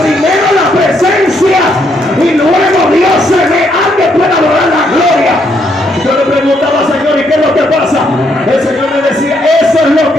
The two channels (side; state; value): both; normal; correlation 0.74